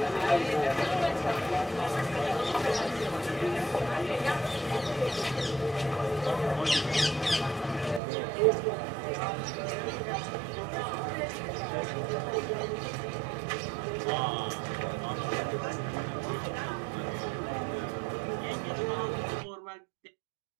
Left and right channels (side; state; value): left; drops out; at 8.0 s